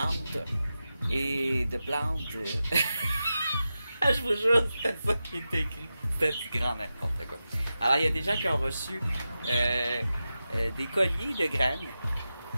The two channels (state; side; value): inverted; both; correlation -0.92